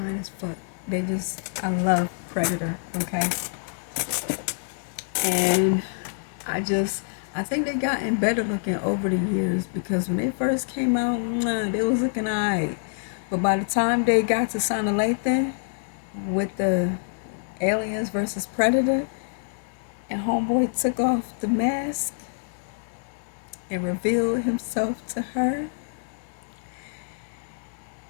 as fuck. I love Predator, okay? And I think they gotten better looking over the years because when they first came out, they was looking alright. But by the time they got to Sana Lathan with the Aliens versus Predator, and Homeboy took off the mask and revealed himself to her,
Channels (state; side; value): silent; right; digital silence